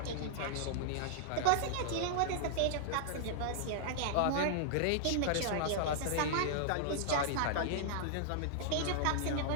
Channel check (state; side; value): different; both; correlation -0.01